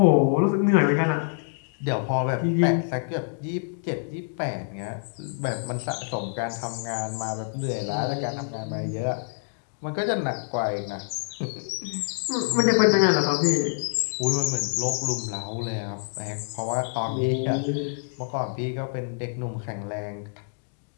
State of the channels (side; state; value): right; silent; digital silence